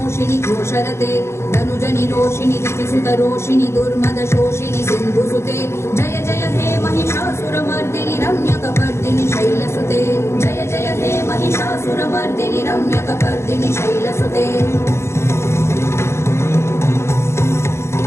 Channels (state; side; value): late; right; 0.13 ms